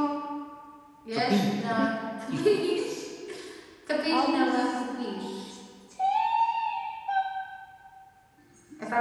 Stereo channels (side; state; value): both; identical; correlation 1.00